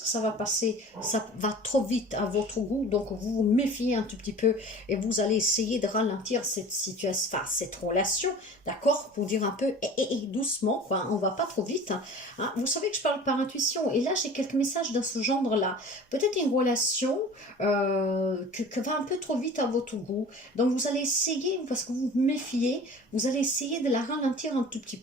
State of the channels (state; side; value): normal; both; correlation 0.41